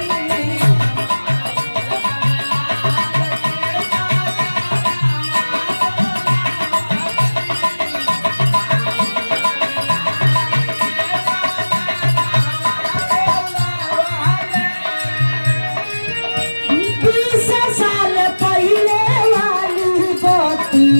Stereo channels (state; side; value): inverted; both; correlation -1.00